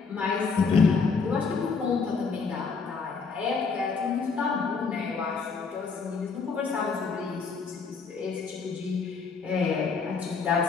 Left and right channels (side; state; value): right; quieter; 5.0 dB